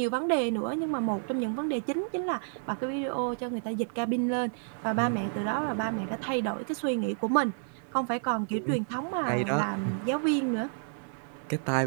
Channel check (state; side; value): silent; left; 58 dB below the other